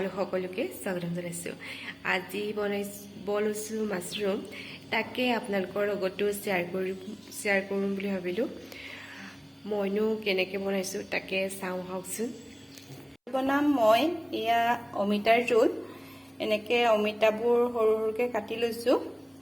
সকলোকে স্বাগতম জনাইছোঁ। আজি বনাইছোঁ মাছৰুম, তাকে আপোনালোকৰ লগতো শ্বেয়াৰ কৰিম বুলি ভাবিলোঁ। মইনো কেনেকৈ বনাইছোঁ তাকে চাওঁ আহকচোন। বনাম মই এয়া অমিতাৰ জোল। এনেকৈ অমিতাবোৰ সৰু সৰুকৈ কাটি লৈছোঁ।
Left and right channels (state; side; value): identical; both; correlation 1.00